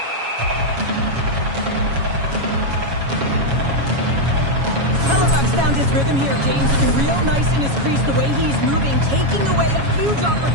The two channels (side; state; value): left; late; 7.2 ms